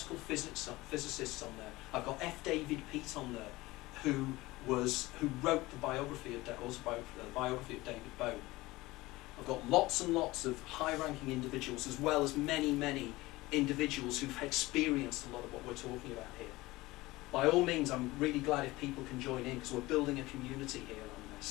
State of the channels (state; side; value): quieter; right; 19.9 dB